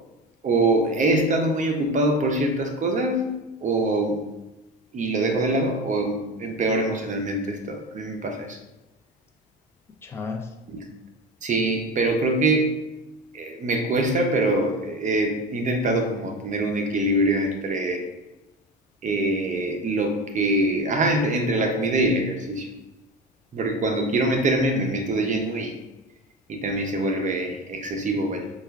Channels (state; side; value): normal; both; correlation 0.26